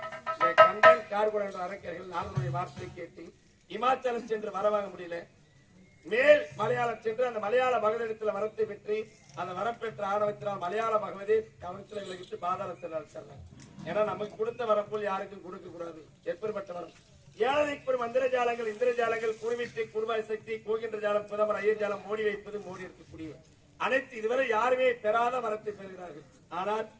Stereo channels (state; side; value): identical; both; correlation 1.00